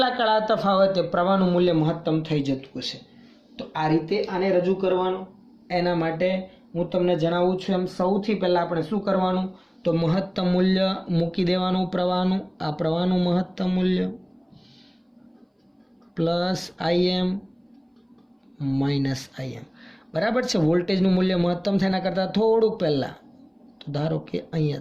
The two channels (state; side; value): identical; both; correlation 1.00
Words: કળા તફાવતે પ્રવાહનું મૂલ્ય મહત્તમ થઈ જતું હશે. તો આ રીતે આને રજૂ કરવાનું. એના માટે હું તમને જણાવું છું એમ સૌથી પહેલાં આપણે શું કરવાનું, તો મહત્તમ મૂલ્ય મૂકી દેવાનું પ્રવાહનું. આ પ્રવાહનું મહત્તમ મૂલ્ય પ્લસ Im માઇનસ Im બરાબર છે. વોલ્ટેજનું મૂલ્ય મહત્તમ થાય એના કરતાં થોડુંક પહેલાં, તો ધારો કે